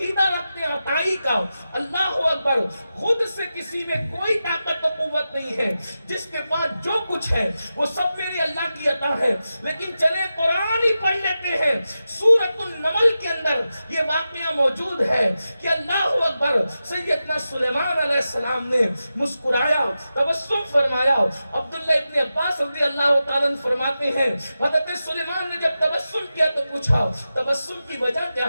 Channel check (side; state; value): both; inverted; correlation -0.92